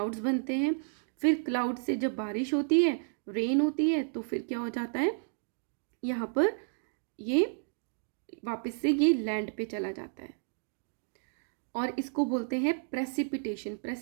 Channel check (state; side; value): silent; left; digital silence